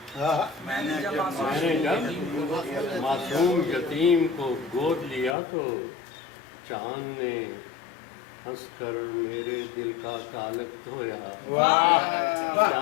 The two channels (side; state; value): right; drops out; at 5.4 s